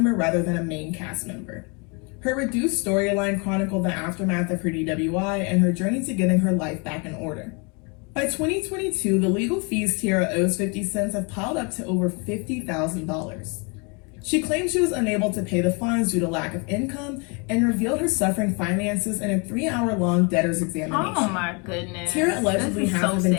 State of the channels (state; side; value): quieter; right; 32.6 dB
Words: rather than a main cast member. Her reduced storyline chronicled the aftermath of her DWI and her journey to getting her life back in order. By 2022, the legal fees Teairra owes 50 Cent have piled up to over $50,000. She claimed she was unable to pay the fines due to lack of income and revealed her suffering finances in a 3-hour-long debtor's examination. Oh my goodness. Teairra allegedly hasn't been